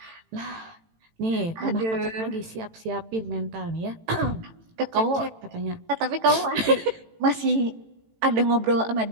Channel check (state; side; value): late; left; 18 ms